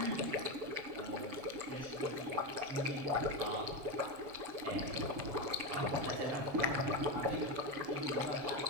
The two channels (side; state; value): left; late; 7.4 ms